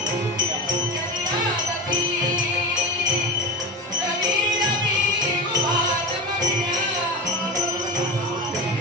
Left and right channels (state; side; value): normal; both; correlation 0.25